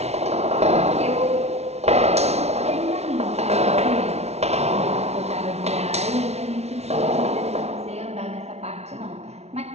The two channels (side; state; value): left; late; 0.31 ms